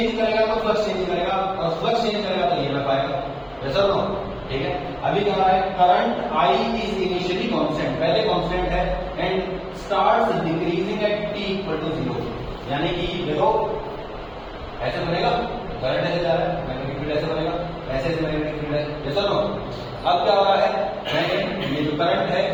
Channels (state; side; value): identical; both; correlation 1.00